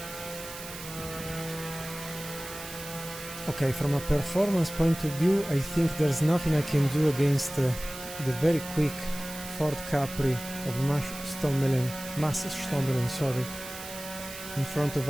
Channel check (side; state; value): right; noise; hiss, 12 dB below the sound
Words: Okay, from a performance point of view, I think there's nothing I can do against the very quick Ford Capri of Massenstommelen, sorry, in front of